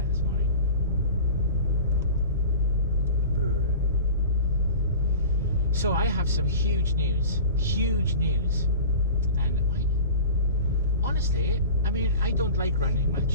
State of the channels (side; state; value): both; inverted; correlation -0.36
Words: this morning. Brr. So I have some huge news, and honestly, I mean, I don't like running